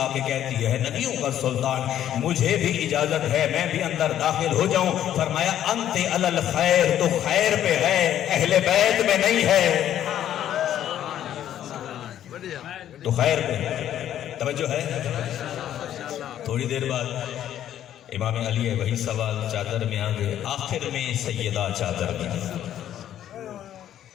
کے کہتی ہے نبیوں کا سلطان مجھے بھی اجازت ہے میں بھی اندر داخل ہو جاؤں۔ فرمایا انت علی الخیر، تو خیر پہ ہے، اہل بیت میں نہیں ہے، تو خیر پہ توجہ ہے۔ تھوڑی دیر بعد امام علی ہے، وہی سوال چادر میں آگے، آخر میں سیدہ چادر میں۔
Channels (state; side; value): quieter; right; 11.2 dB